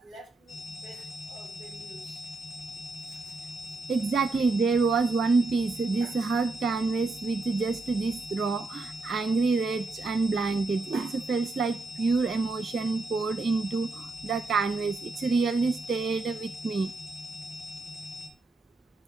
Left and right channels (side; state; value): left; quieter; 3.5 dB